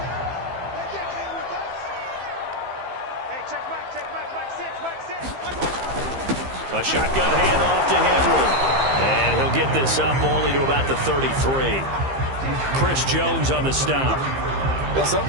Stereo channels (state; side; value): late; left; 15 ms